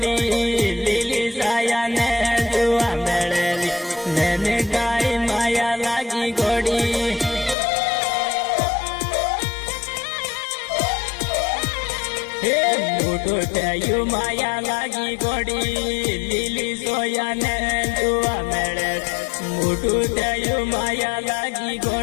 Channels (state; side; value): drops out; right; at 7.6 s